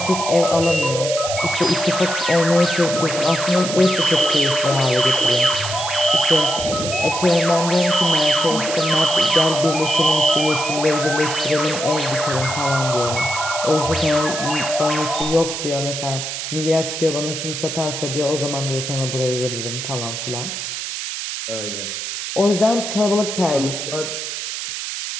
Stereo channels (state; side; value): noise; right; hiss, 5 dB below the sound